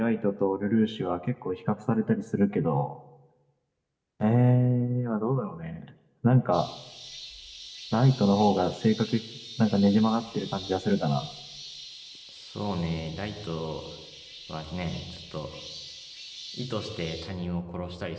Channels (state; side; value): identical; both; correlation 1.00